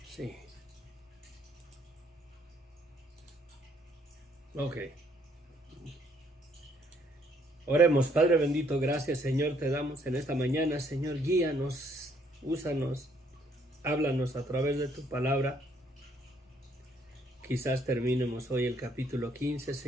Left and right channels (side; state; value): both; normal; correlation 0.67